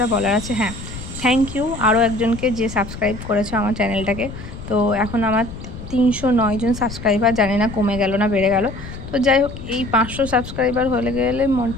বলার আছে, হ্যাঁ, থ্যাংক ইউ আরও একজনকে যে সাবস্ক্রাইব করেছে আমার চ্যানেলটাকে। তো এখন আমার 309 জন সাবস্ক্রাইবার, জানি না কমে গেল না বেড়ে গেল। তো যাই হোক, এই 500 সাবস্ক্রাইবার হলে গেলে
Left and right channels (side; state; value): left; noise; rumble, 11 dB below the sound